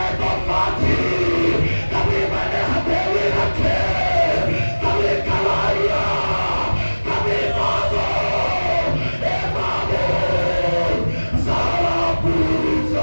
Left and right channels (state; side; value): inverted; both; correlation -1.00